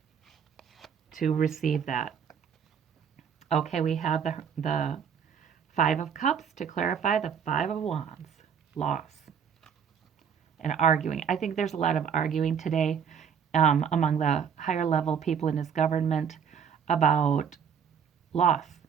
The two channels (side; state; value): left; quieter; 7.5 dB